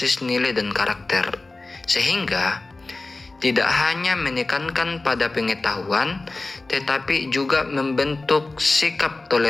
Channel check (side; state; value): right; quieter; 3.3 dB